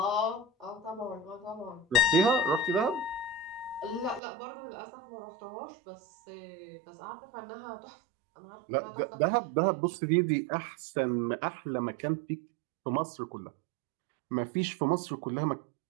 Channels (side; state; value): left; drops out; at 4.2 s